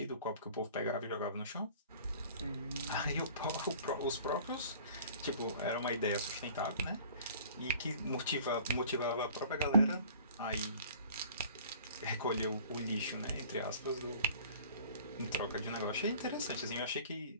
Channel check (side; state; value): both; inverted; correlation -0.48